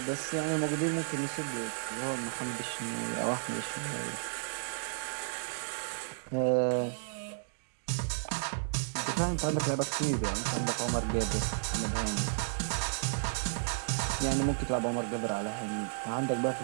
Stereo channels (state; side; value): silent; left; digital silence